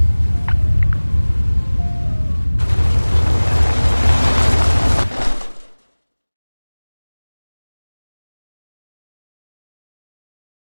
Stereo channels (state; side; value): inverted; both; correlation -1.00